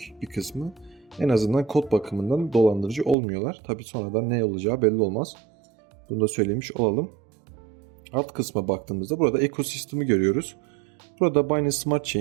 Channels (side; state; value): left; drops out; at 3.2 s